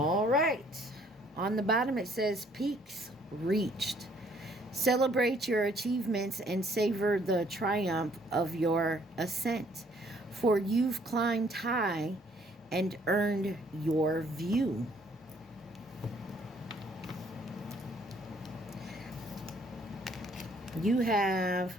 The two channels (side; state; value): both; normal; correlation 0.63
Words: right. On the bottom it says peaks reached. Celebrate your achievements and savor the triumph of your ascent. For you've climbed high and earned your view. You have